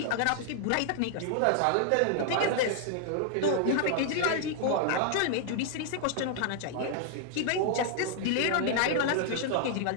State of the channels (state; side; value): different; both; correlation 0.00